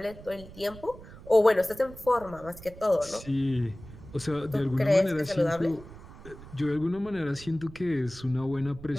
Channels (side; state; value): right; noise; rumble, 17 dB below the sound